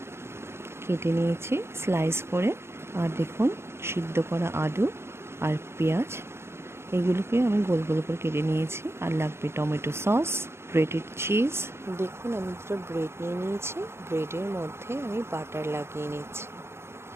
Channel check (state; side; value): late; left; 0.12 ms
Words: কেটে নিয়েছি স্লাইস করে, আর দেখুন সিদ্ধ করা আলু আর পেঁয়াজ, এগুলোকে আমি গোল গোল করে কেটে নিয়েছি। আর লাগবে টমেটো সস, গ্রেটেড চিজ। দেখুন, আমি দুটো ব্রেড নিয়ে নিয়েছি। ব্রেডের মধ্যে আমি বাটার লাগিয়ে নিচ্ছি।